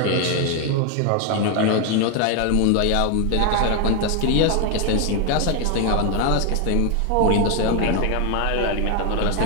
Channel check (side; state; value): both; different; correlation 0.01